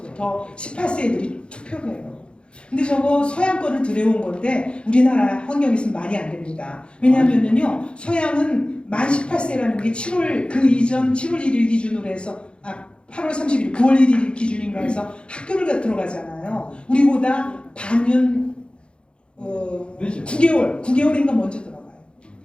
18세 애들이 투표를 해요. 근데 저거 서양 거를 들여온 건데 우리나라 환경에서는 말이 안 됩니다. 왜냐하면요 서양은 만 18세라는 게 7월 그 이전 7월 1일 기준으로 해서 8월 30일 9월 1일 기준인가 해서 학교를 들어가잖아요. 우리보다 반년 9개월인가 먼저 들어가요.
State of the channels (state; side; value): late; right; 0.055 ms